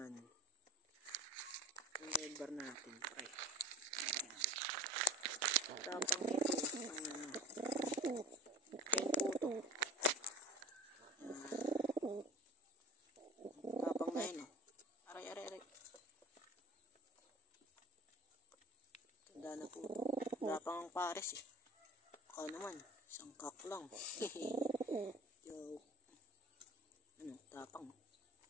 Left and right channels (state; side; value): normal; both; correlation 0.37